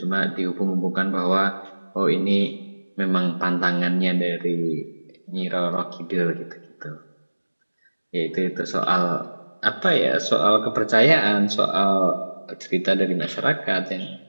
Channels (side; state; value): both; inverted; correlation -1.00